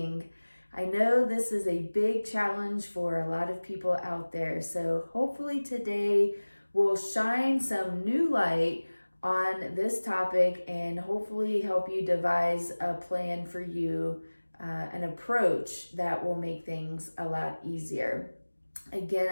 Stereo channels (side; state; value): both; inverted; correlation -1.00